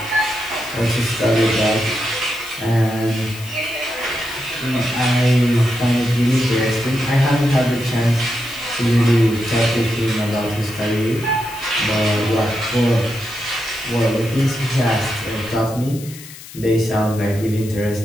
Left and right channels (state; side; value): noise; left; hiss, 16 dB below the sound